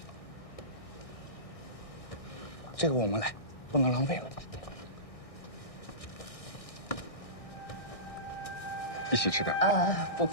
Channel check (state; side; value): late; right; 1.6 ms